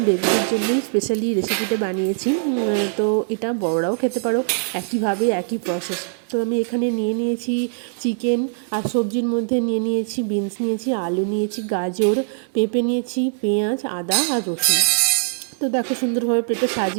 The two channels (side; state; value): left; silent; digital silence